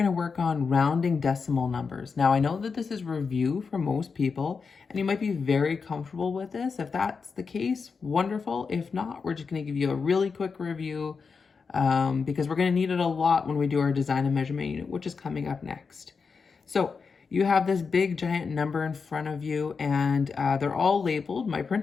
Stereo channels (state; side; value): quieter; right; 5.2 dB